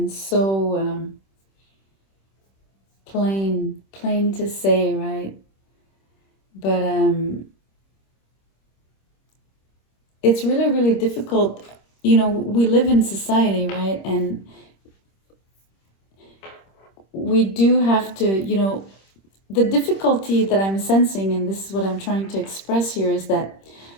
so plain to say, right? But it's really, really difficult. We live in society, right? And we do have to, the difficulty that I'm sensing, and this is what I'm trying to express here, is that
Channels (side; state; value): right; late; 26 ms